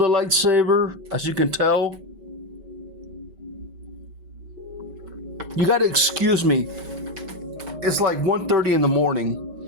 lightsaber, as you can tell. You gotta excuse me. it's like 1:30 in the morning.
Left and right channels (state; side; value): late; left; 5.2 ms